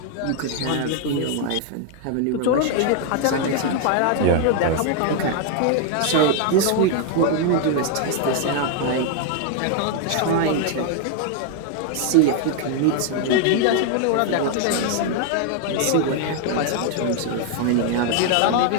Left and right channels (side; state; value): both; different; correlation 0.00